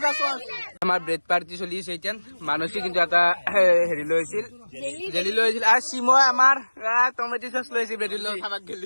সস আমাৰ ব্ৰেড পাৰ্টি চলিছে এতিয়া মানসি কিন্তু এটা হেৰি লৈছিল জেলি লৈছিল আৰু শিমই আমাৰ টমেটো সস লৈছিল ব্রেড লৈ খাবাক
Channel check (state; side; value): inverted; both; correlation -1.00